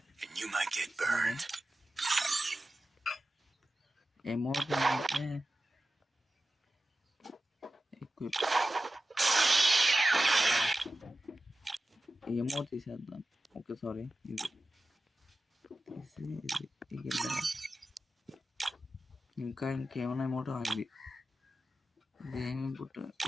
and you might get burned. Emote అంటే equip. Emote తీసేద్దాం. ఓకే సారీ, ఇది ఇంకా ఇంకేమైనా ఎమోట్ ఇది ఏమి పుట్టు.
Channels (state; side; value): normal; both; correlation 0.94